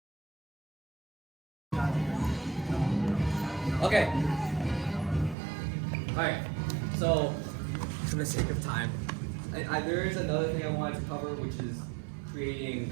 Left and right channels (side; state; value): left; drops out; at 5.4 s